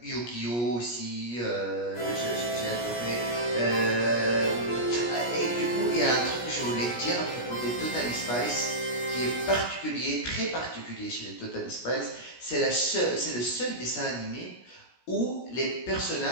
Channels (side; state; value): right; late; 17 ms